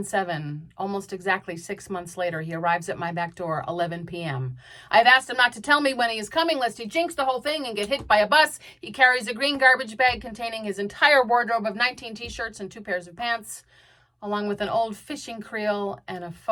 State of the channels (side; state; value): both; identical; correlation 1.00